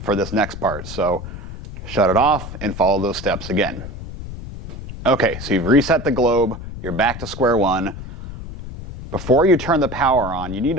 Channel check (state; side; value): noise; left; rumble, 10 dB below the sound